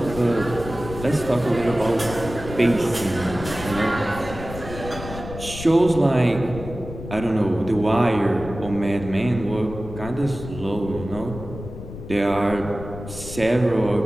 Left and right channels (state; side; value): noise; left; rumble, 11 dB below the sound